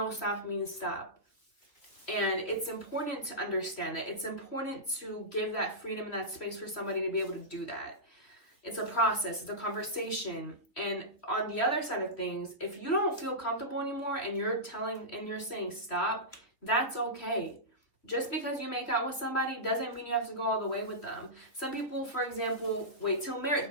stop means stop. And it's important to understand that. It's important to give that freedom and that space for somebody to be able to do that. It's a process, it's a conversation. And on the other side of things, if you don't feel comfortable anymore and you're saying stop, that's okay. Just because you make out with somebody doesn't mean you have to go all the way with them. Some people, for example, wait till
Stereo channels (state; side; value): late; right; 3.1 ms